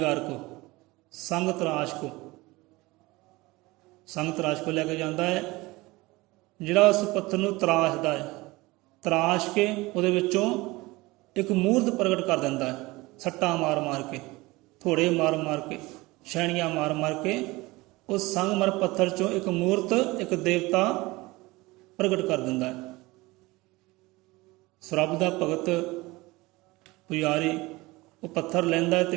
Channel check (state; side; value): quieter; left; 21.5 dB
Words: ਕੋ, ਸੰਗ ਤਰਾਸ਼ ਕੋ ਲੈ ਕੇ ਜਾਂਦਾ ਹੈ, ਜਿਹੜਾ ਉਸ ਪੱਥਰ ਨੂੰ ਤਰਾਸ਼ਦਾ ਹੈ। ਤਰਾਸ਼ ਕੇ ਉਹਦੇ ਵਿੱਚੋਂ ਇੱਕ ਮੂਰਤ ਪ੍ਰਗਟ ਕਰ ਦਿੰਦਾ ਹੈ, ਸੱਟਾਂ ਮਾਰ ਮਾਰ ਕੇ, ਥੋੜੇ ਮਾਰ ਮਾਰ ਕੇ, ਛੈਣੀਆਂ ਮਾਰ ਮਾਰ ਕੇ ਉਸ ਸੰਗਮਰ ਪੱਥਰ 'ਚੋਂ ਇੱਕ ਮੂਰਤ, ਇੱਕ ਦੇਵਤਾ ਪ੍ਰਗਟ ਕਰ ਦਿੰਦਾ ਹੈ। ਰੱਬ ਦਾ ਭਗਤ ਪੁਜਾਰੀ ਉਹ ਪੱਥਰ ਲੈਂਦਾ ਹੈ ਤੇ